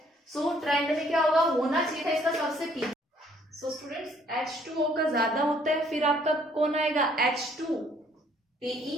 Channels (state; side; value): normal; both; correlation 0.63